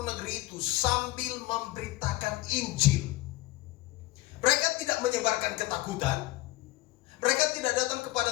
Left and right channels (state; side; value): quieter; right; 18.4 dB